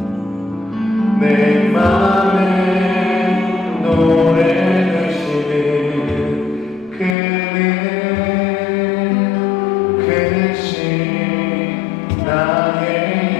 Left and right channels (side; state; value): right; drops out; at 7.2 s